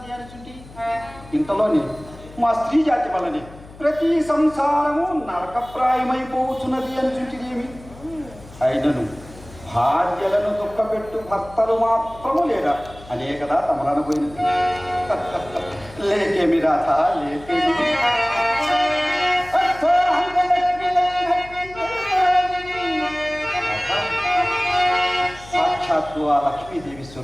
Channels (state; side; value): noise; left; hum, 19 dB below the sound